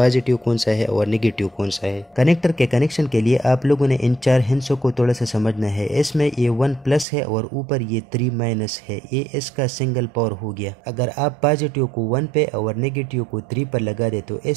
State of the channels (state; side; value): drops out; left; at 7.1 s